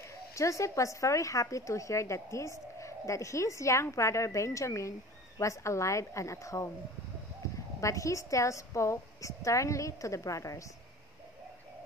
Joseph was very happy to hear that his young brother Benjamin was alive and at home. But he still spoke sternly to the brothers.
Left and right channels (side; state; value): both; normal; correlation 0.40